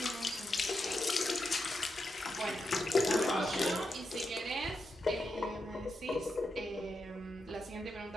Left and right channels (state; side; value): normal; both; correlation 0.85